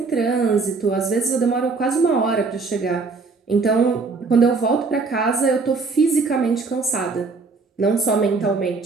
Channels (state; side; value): quieter; left; 4.2 dB